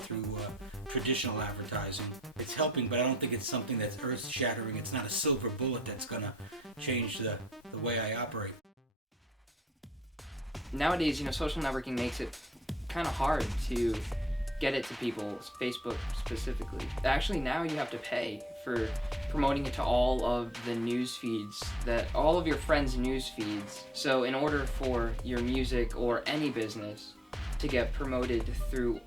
traditional advertising. It's helping, but I don't think it's something that's earth-shattering. It's not a silver bullet that's going to change the way I operate. Nowadays, social networking makes it kind of hard to get it to people, Facebook specifically. Actually, now you have to pay for promoting it to all of the news feeds, all of your friends' news feeds. So in order for your music or any business to get promoted through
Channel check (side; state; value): both; normal; correlation 0.68